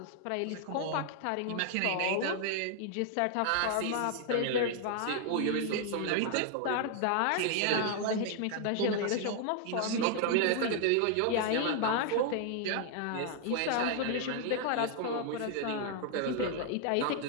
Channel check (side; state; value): both; different; correlation 0.00